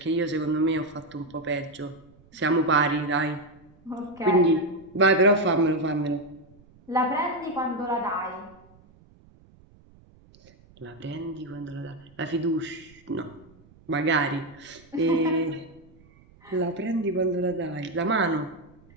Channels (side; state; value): right; noise; rumble, 27 dB below the sound